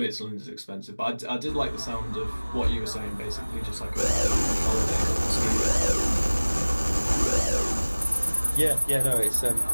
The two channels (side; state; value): both; inverted; correlation -1.00